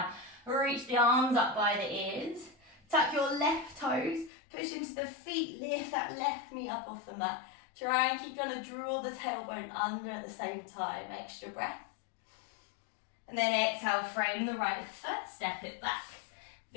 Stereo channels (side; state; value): right; drops out; at 4.3 s